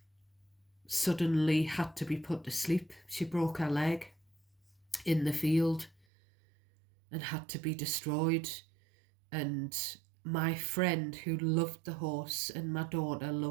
suddenly had to be put to sleep. She broke her leg in the field and had to be destroyed. And my friend who loved the horse, and my daughter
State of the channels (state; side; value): drops out; left; at 6.1 s